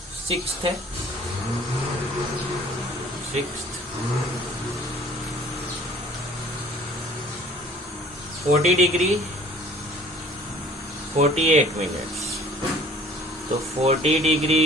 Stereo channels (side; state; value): both; normal; correlation 0.52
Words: सिक्स्थ है, 40 डिग्री 48 मिनट्स, तो 40